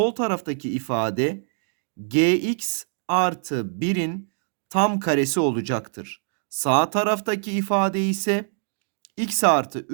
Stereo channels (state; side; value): silent; left; digital silence